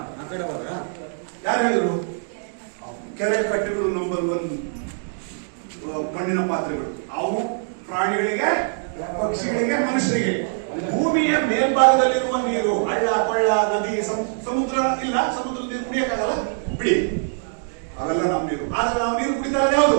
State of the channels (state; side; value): silent; left; digital silence